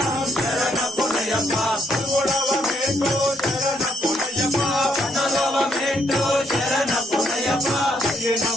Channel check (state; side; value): normal; both; correlation 0.73